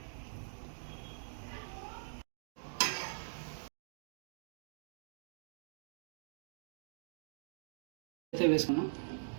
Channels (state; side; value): silent; left; digital silence